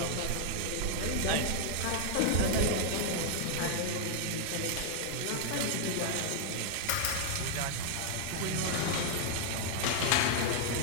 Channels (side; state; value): both; different; correlation 0.00